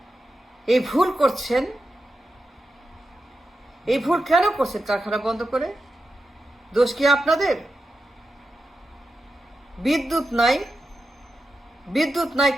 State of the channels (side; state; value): both; normal; correlation 0.89